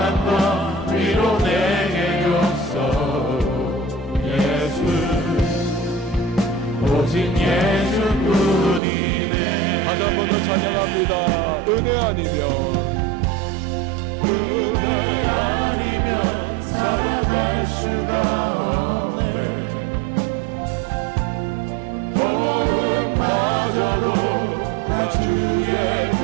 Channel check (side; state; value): left; drops out; at 8.8 s